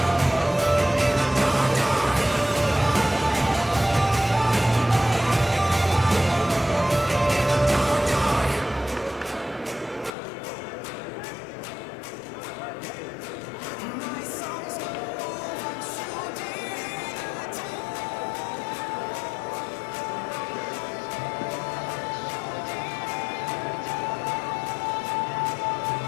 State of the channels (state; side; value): drops out; right; at 10.1 s